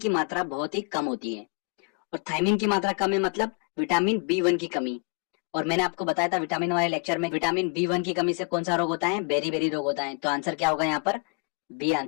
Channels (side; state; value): right; quieter; 34.7 dB